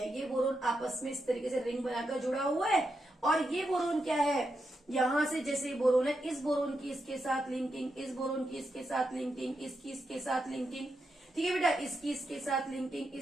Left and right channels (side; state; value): both; normal; correlation 0.85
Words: ये बोरोन आपस में इस तरीके से रिंग बनाकर जुड़ा हुआ है। और ये बोरोन क्या है, यहां से जैसे बोरोन है, इस बोरोन की इसके साथ लिंकिंग, इस बोरोन की इसके साथ लिंकिंग, इसकी इसके साथ लिंकिंग, ठीक है बेटा, इसकी इसके साथ लिंकिंग,